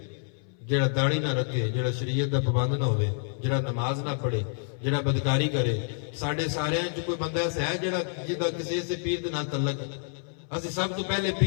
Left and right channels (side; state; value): right; silent; 58 dB below the other